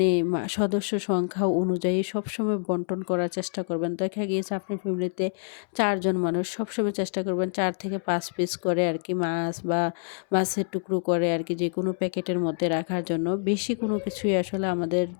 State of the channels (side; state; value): right; silent; 60 dB below the other